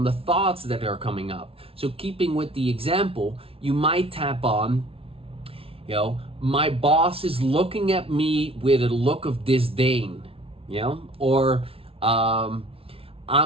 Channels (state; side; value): late; left; 0.27 ms